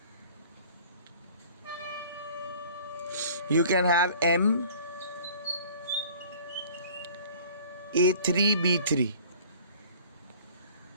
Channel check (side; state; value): both; inverted; correlation -0.49